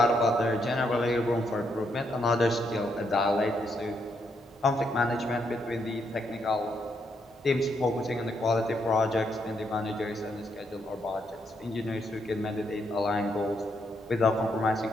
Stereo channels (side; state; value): both; normal; correlation 0.77